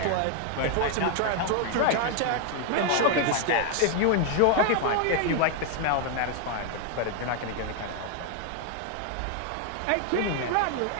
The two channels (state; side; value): different; both; correlation 0.00